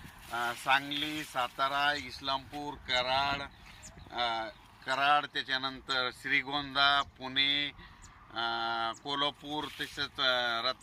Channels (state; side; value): identical; both; correlation 1.00